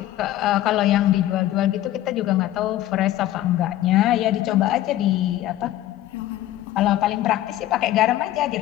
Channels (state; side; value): quieter; right; 14.1 dB